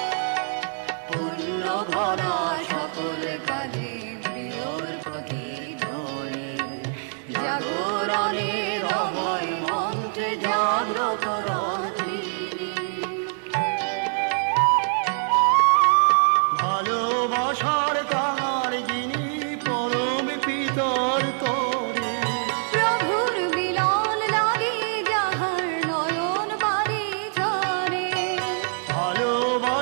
পুণ্য ভরা সকল কাজে প্রিয়র প্রতি ধরে, জাগরণের অভয় মন্ত্রে জাগ্রত রন্ত্রী। ভালোবাসার কাঙাল যিনি পরম পিতর করে, প্রভুর মিলন লাগে যাহার নয়ন বাড়ি ঝরে।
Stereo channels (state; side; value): silent; left; 62 dB below the other